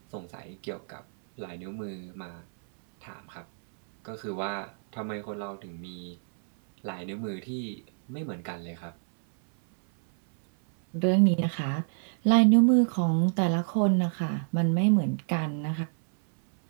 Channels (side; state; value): left; silent; 59 dB below the other